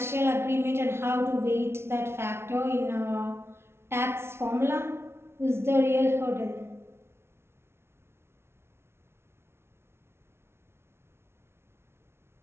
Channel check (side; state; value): left; late; 0.12 ms